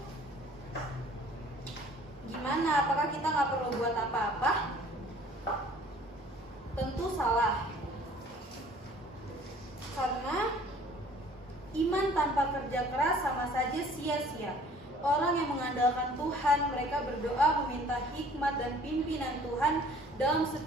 gimana? Apakah kita nggak perlu buat apa-apa? Tentu salah. Karena iman tanpa kerja keras sama saja sia-sia. Orang yang mengandalkan Tuhan, mereka berdoa meminta hikmat dan pimpinan Tuhan dalam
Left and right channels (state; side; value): normal; both; correlation 0.53